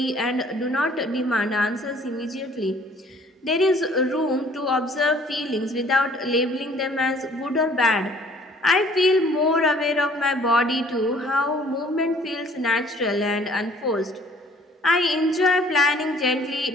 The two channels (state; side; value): normal; both; correlation 0.56